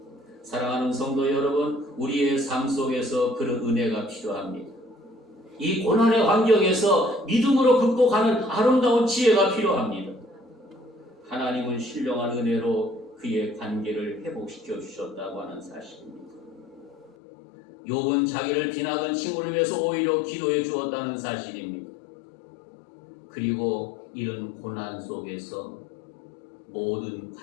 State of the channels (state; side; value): drops out; right; at 17.1 s